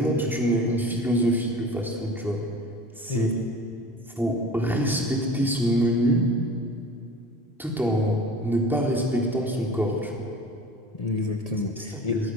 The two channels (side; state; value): both; normal; correlation 0.40